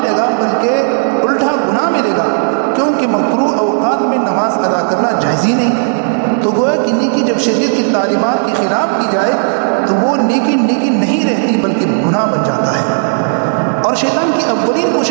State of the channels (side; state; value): left; silent; digital silence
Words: گا بلکہ الٹا گناہ ملے گا، کیونکہ مکروہ اوقات میں نماز ادا کرنا جائز ہی نہیں. تو گویا کہ نیکی جب شریعت کی تعلیمات کے خلاف کی جائے تو وہ نیکی نہیں رہتی بلکہ گناہ بن جاتا ہے. اور شیطان کی اولین